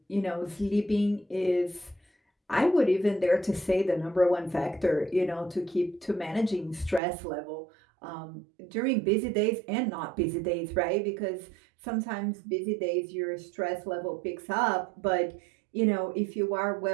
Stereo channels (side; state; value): left; drops out; at 7.0 s